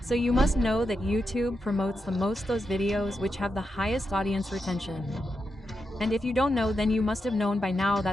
So you must know that YouTube promotes the most those videos which have the highest audience retention. And if you don't know, then you must have known by now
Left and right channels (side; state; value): both; normal; correlation 0.86